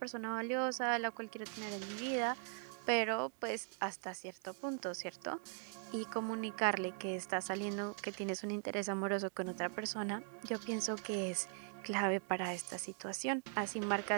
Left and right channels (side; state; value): left; silent; 51 dB below the other